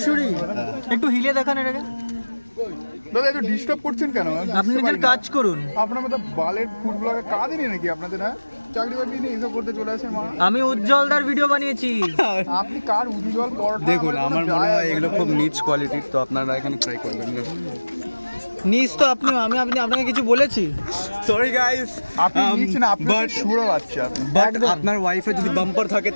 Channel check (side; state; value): both; inverted; correlation -1.00